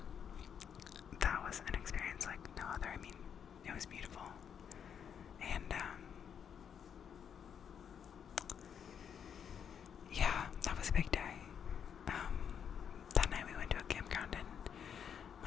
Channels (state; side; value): quieter; right; 7.9 dB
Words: that was an experience like no other. I mean, it was beautiful. And yeah, that was a big day. That night we went to a campground in